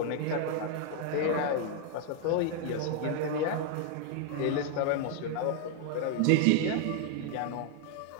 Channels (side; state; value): both; different; correlation 0.00